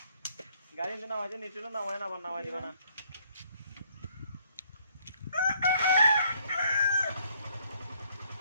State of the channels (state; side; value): inverted; both; correlation -0.67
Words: গাড়ি নামাইছে নিচুলো নামায় না, আবার নামাই দিবা না।